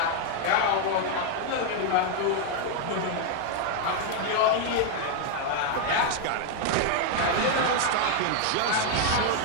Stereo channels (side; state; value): both; different; correlation 0.00